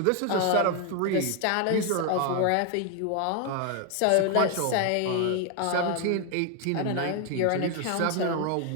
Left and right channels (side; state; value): both; different; correlation 0.01